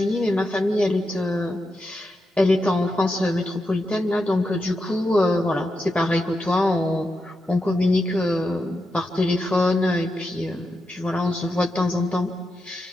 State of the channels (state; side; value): normal; both; correlation 0.87